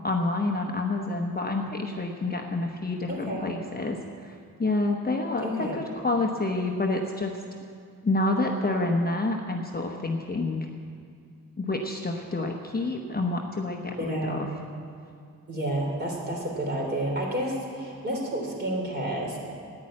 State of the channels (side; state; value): both; normal; correlation 0.41